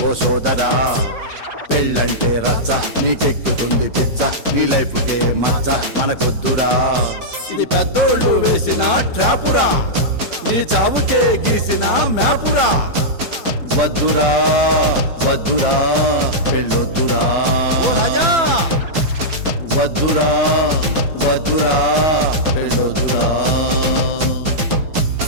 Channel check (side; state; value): left; late; 6.0 ms